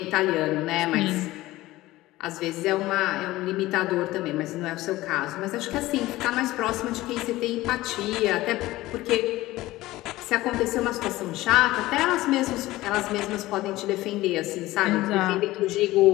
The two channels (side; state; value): right; quieter; 17.5 dB